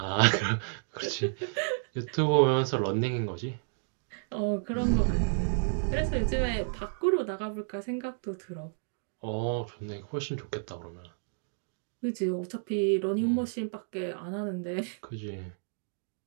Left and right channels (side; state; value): left; silent; digital silence